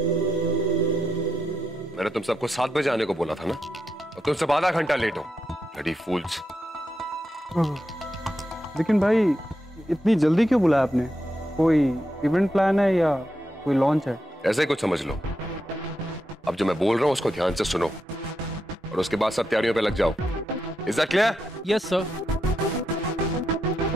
मैंने तुम सबको 7 बजे आने को बोला था ना, और तुम सब आधा घंटा लेट हो। ब्लडी फूल्स। लेकिन भाई इतनी जल्दी क्यों बुलाया आपने? कोई इवेंट प्लान है या कोई लॉन्च है? ऐसे ही कुछ समझ लो। अब जो मैं बोल रहा हूं उसको ध्यान से सुनो और उसके बाद सब तैयारियों पे लग जाओ। Is that clear? Yes sir.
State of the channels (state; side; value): normal; both; correlation 0.85